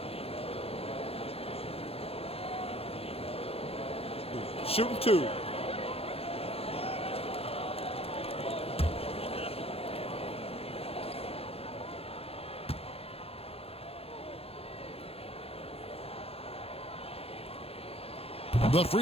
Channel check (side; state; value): right; late; 0.28 ms